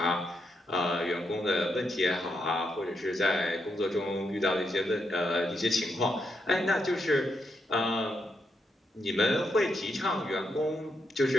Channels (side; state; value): both; normal; correlation 0.81